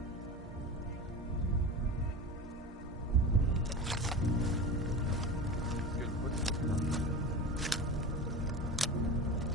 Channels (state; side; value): normal; both; correlation 0.29